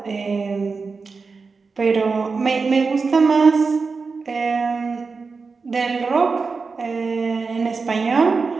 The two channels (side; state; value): left; quieter; 4.6 dB